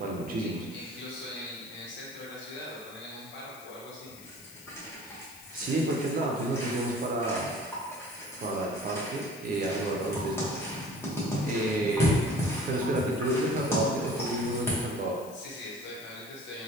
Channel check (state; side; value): noise; left; hiss, 18 dB below the sound